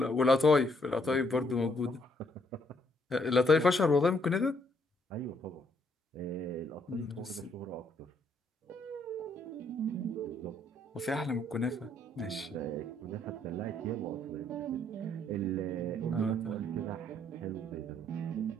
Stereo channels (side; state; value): both; normal; correlation 0.70